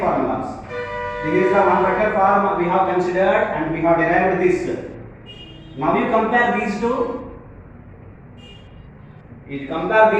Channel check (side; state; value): both; identical; correlation 1.00